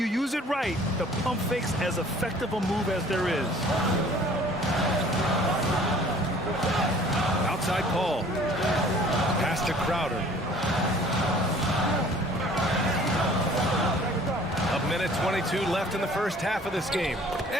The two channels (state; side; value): normal; both; correlation 0.52